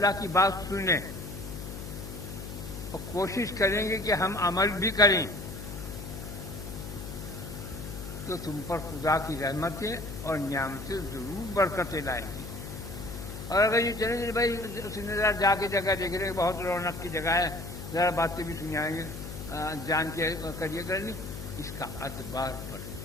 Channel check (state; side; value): noise; left; hum, 9 dB below the sound